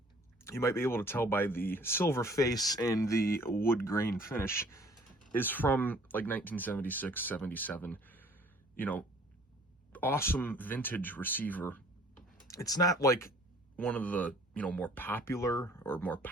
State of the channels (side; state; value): both; normal; correlation 0.54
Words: might be able to tell by the silver face and the wood grain finish, is from like 1976, 77. You know, awesome vintage receiver. It's not like one of the, more popular or more